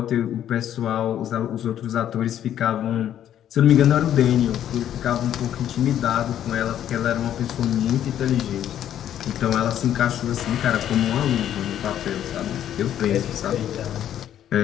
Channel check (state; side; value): quieter; right; 10.7 dB